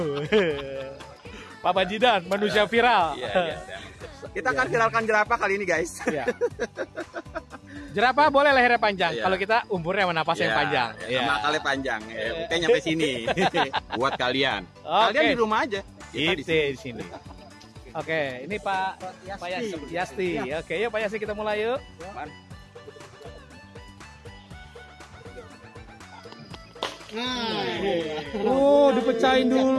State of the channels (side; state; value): both; identical; correlation 1.00